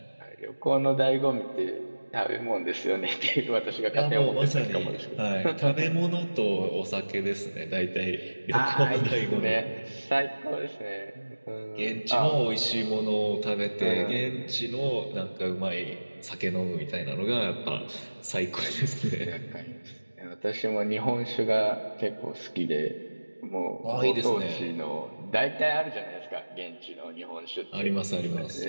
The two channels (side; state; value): both; inverted; correlation -1.00